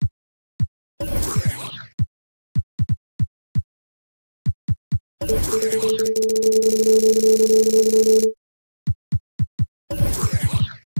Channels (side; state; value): both; inverted; correlation -1.00